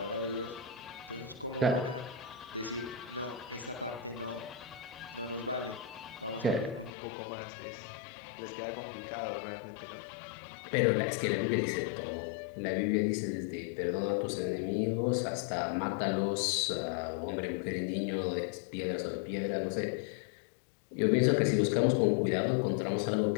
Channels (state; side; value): drops out; right; at 6.9 s